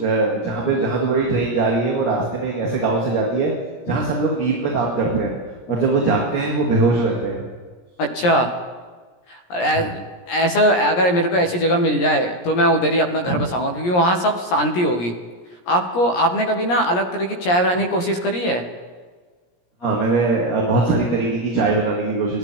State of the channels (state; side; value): late; right; 17 ms